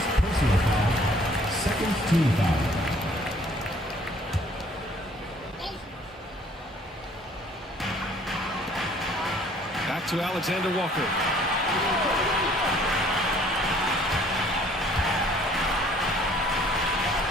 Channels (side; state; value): both; normal; correlation 0.58